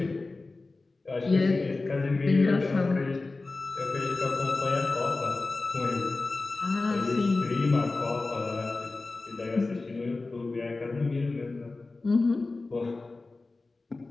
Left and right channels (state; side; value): quieter; right; 3.5 dB